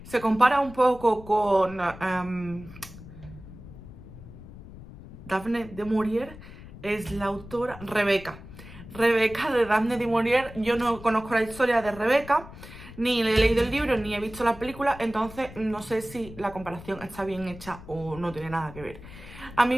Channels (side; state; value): left; noise; rumble, 16 dB below the sound